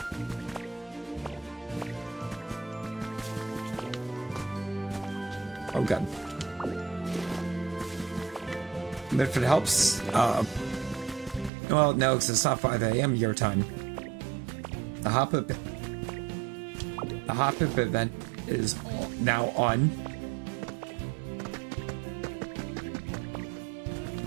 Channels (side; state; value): left; drops out; at 11.5 s